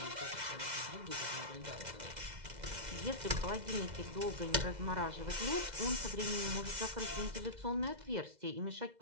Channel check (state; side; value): late; left; 2.0 ms